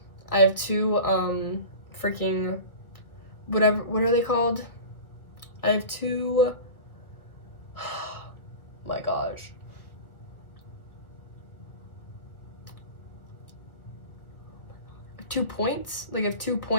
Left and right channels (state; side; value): late; right; 1.6 ms